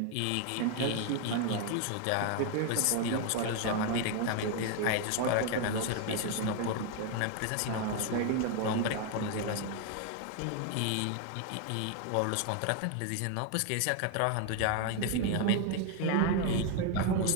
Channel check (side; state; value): both; different; correlation 0.01